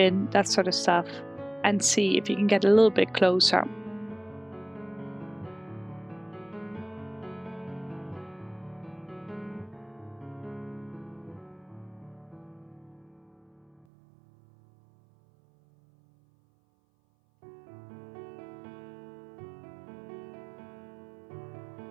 that sort of stuff, and see if you can get a little bit closer.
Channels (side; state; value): left; drops out; at 13.9 s